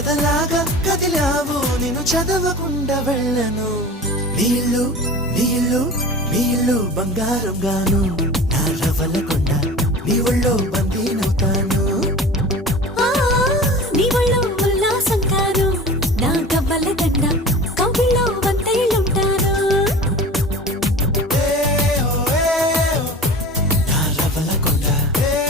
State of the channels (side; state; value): both; normal; correlation 0.37